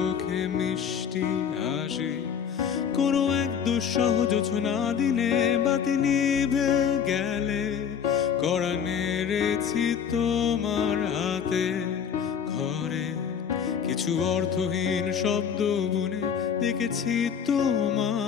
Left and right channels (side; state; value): right; quieter; 7.6 dB